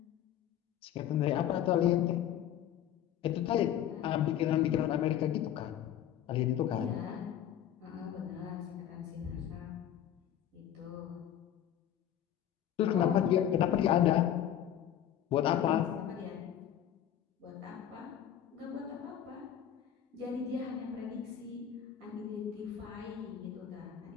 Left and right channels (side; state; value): right; quieter; 10.6 dB